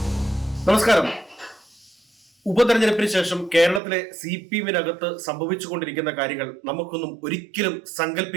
നമസ്കാരം. ഉപതെരഞ്ഞെടുപ്പിന് ശേഷം കേരളത്തിലെ CPM-നകത്ത് സംഭവിച്ചുകൊണ്ടിരിക്കുന്ന കാര്യങ്ങൾ നമുക്കൊന്നും ഒരിക്കലും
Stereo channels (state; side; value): drops out; left; at 3.8 s